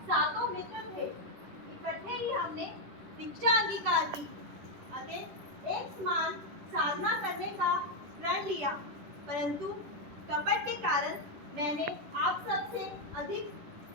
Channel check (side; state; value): left; late; 10 ms